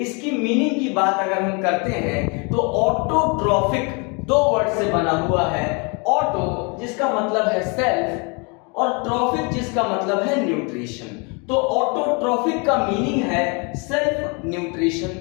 इसकी मीनिंग की बात अगर हम करते हैं तो ऑटोट्रॉफिक दो वर्ड से बना हुआ है। ऑटो जिसका मतलब है सेल्फ और ट्रॉफिक जिसका मतलब है न्यूट्रिशन। तो ऑटोट्रॉफिक का मीनिंग है सेल्फ न्यूट्रिशन।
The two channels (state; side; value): quieter; right; 32.5 dB